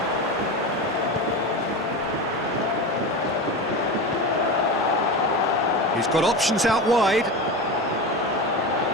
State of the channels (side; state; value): both; normal; correlation 0.24